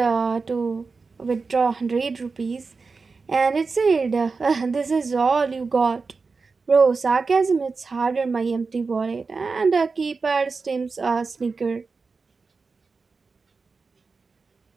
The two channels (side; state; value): left; quieter; 4.5 dB